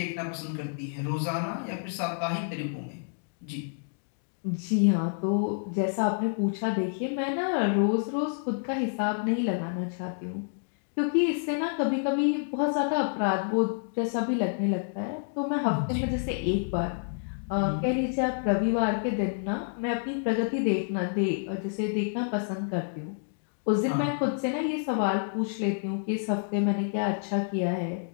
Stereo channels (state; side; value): silent; right; digital silence